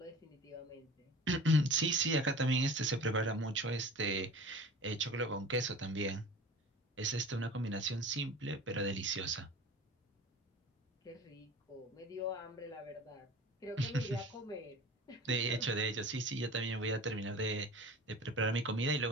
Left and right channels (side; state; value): both; normal; correlation 0.39